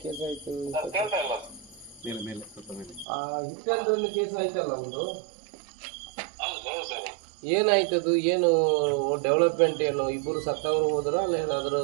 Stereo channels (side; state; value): left; drops out; at 3.1 s